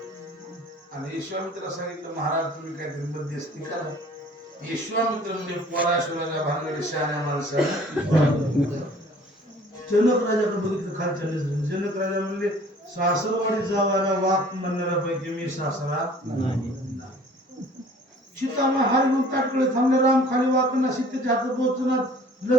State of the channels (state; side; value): normal; both; correlation 0.51